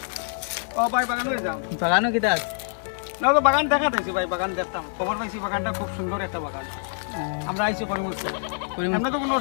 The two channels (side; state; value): right; silent; digital silence